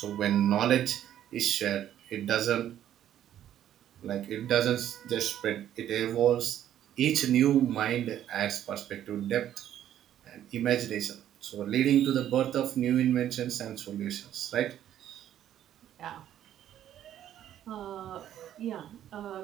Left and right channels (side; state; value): left; quieter; 11.2 dB